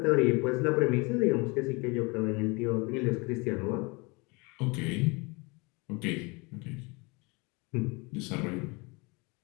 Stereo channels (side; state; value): right; quieter; 27.9 dB